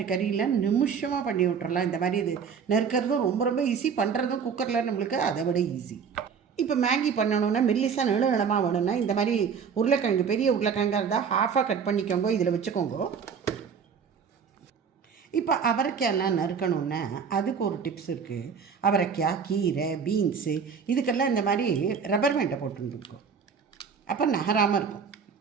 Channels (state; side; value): quieter; left; 6.5 dB